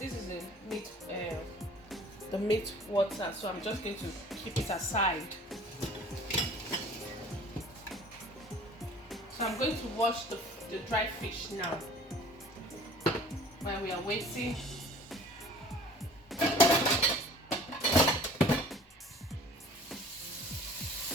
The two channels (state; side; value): normal; both; correlation 0.48